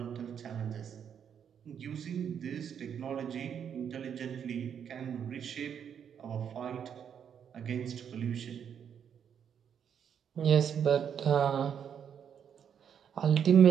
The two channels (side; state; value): left; quieter; 8.1 dB